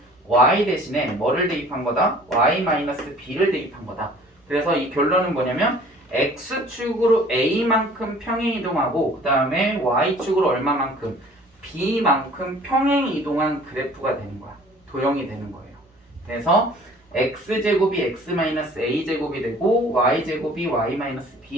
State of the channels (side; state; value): both; normal; correlation 0.51